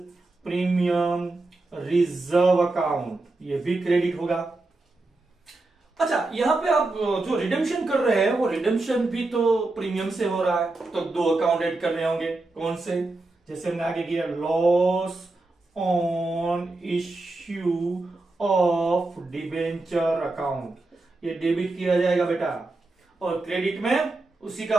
प्रीमियम रिजर्व अकाउंट, ये भी क्रेडिट होगा। अच्छा यहां पे आप जो रिडेम्पशन कर रहे हैं वो रिडेम्पशन भी तो प्रीमियम से हो रहा है, तो दो अकाउंट ऐड करने होंगे। कौन से, जैसे हमने आगे किया loss on issue of debenture account, ये डेबिट किया जाएगा बेटा, और क्रेडिट में उसी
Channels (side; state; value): left; quieter; 3.1 dB